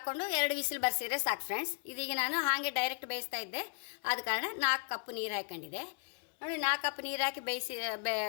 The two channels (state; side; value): quieter; right; 37.9 dB